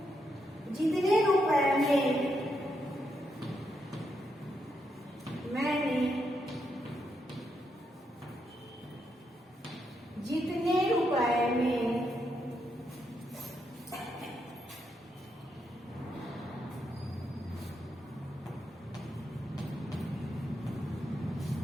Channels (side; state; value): both; normal; correlation 0.80